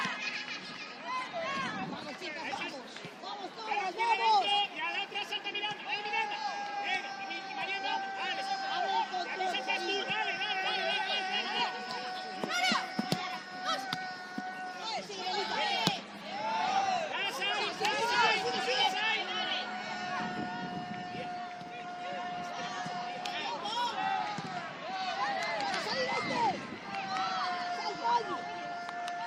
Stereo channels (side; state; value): both; identical; correlation 1.00